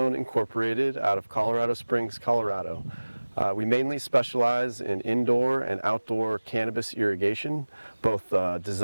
Incorporated out of Colorado Springs, Colorado. We mainly specialize in indoor and outdoor cannabis irrigation, both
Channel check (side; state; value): both; inverted; correlation -1.00